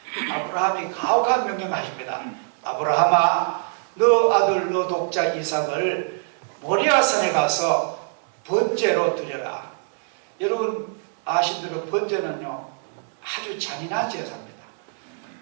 아브라함이 가혹한 명령하십니다. 아브라함아, 너 아들 너 독자 이삭을 모리아산에 가서 번제로 드려라. 여러분 아시대로 번제는요 아주 잔인한 제사입니다.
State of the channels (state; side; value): silent; left; 63 dB below the other